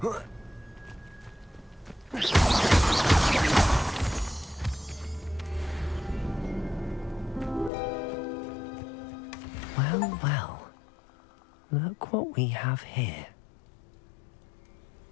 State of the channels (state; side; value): drops out; right; at 7.7 s